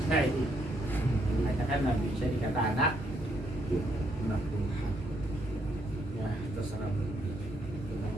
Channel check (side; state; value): both; normal; correlation 0.73